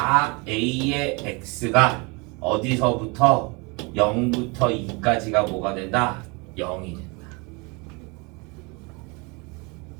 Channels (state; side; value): quieter; left; 29.3 dB